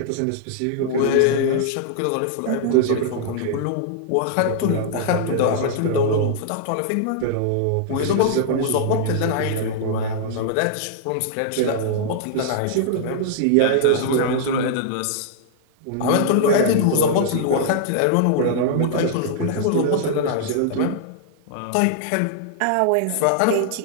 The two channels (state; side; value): different; both; correlation -0.01